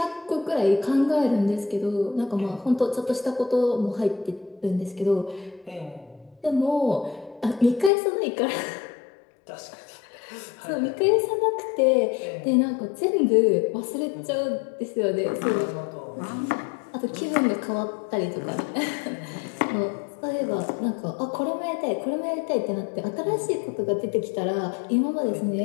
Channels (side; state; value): right; drops out; at 7.9 s